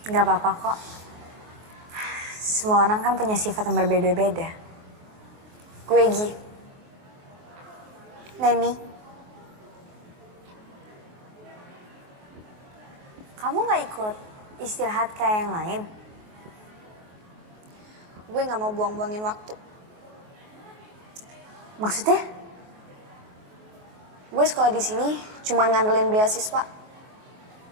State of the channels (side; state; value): left; late; 24 ms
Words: Gak apa-apa kok. Semua orang kan punya sifat yang berbeda-beda. Gue Gi. Neni. Kamu gak ikut istirahat kayak yang lain? Gue gak mau buang-buangin waktu. Maksudnya? Gue sekolah di sini cuma ngandelin beasiswa.